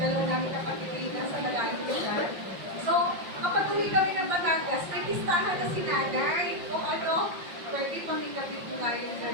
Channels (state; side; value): late; left; 5.6 ms